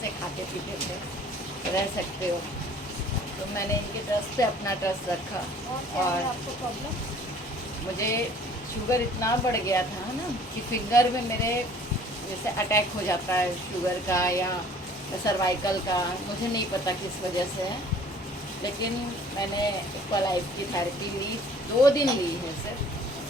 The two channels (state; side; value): normal; both; correlation 0.52